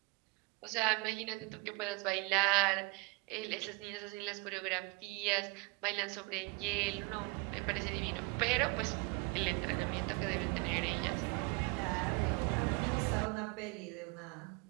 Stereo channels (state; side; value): quieter; left; 26.5 dB